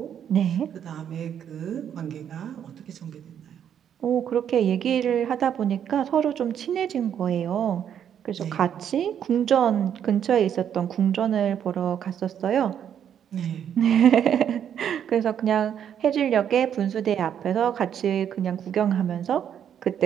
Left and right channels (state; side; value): quieter; left; 9.1 dB